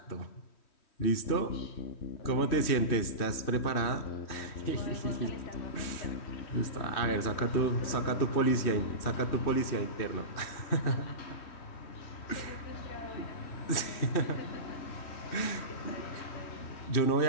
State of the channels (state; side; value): late; right; 3.1 ms